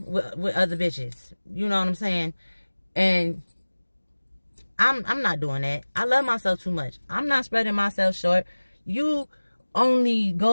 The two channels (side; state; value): both; inverted; correlation -1.00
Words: with other bitches. You know what I'm saying? And I'm not doing that. I love myself too much. I'm not spreading myself short. You only